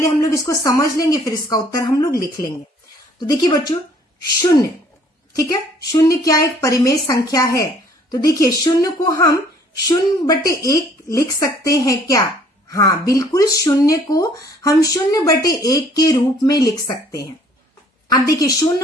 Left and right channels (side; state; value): both; normal; correlation 0.59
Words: हम लोग इसको समझ लेंगे, फिर इसका उत्तर हम लोग लिख लेंगे। तो देखिए बच्चों, शून्य, ठीक है, शून्य क्या एक परिमेय संख्या है? तो देखिए शून्य को हम 0/1 लिख सकते हैं क्या? हाँ बिल्कुल, शून्य को हम 0/1 के रूप में लिख सकते हैं। अब देखिए